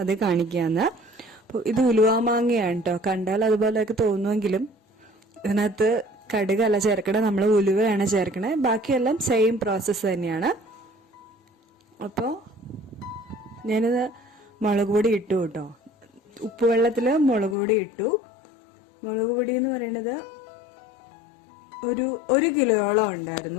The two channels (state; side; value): drops out; right; at 17.6 s